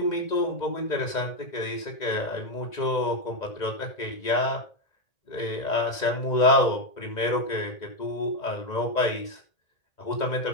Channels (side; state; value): right; late; 2.1 ms